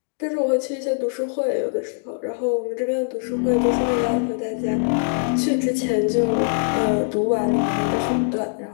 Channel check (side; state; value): right; silent; digital silence